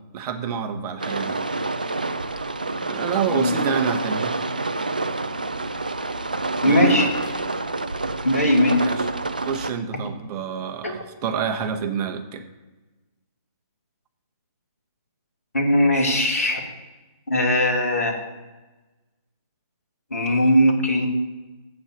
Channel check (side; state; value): both; inverted; correlation -0.59